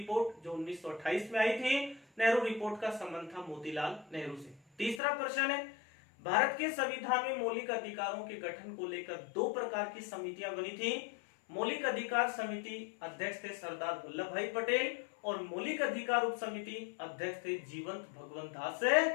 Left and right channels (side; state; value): right; drops out; at 5.0 s